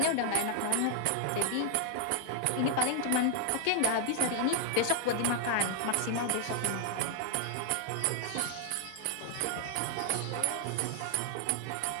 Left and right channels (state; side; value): different; both; correlation 0.00